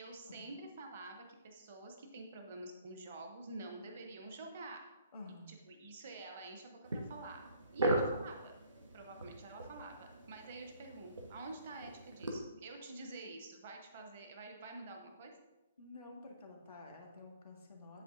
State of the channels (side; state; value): both; inverted; correlation -0.60